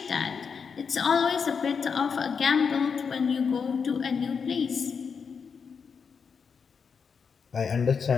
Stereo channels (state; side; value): quieter; right; 6.0 dB